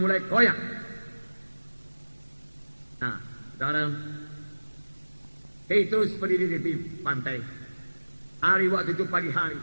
koyak. Nah, saudara, Petrus berdiri di pantai. Hari waktu itu pagi hari.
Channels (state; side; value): inverted; both; correlation -1.00